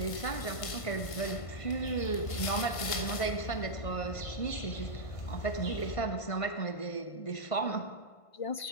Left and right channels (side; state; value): right; late; 1.5 ms